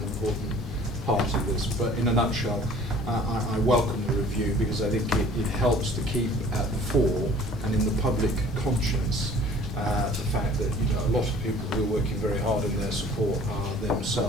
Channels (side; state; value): both; normal; correlation 0.50